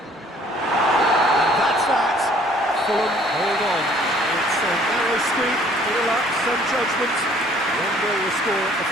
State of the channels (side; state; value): both; normal; correlation 0.58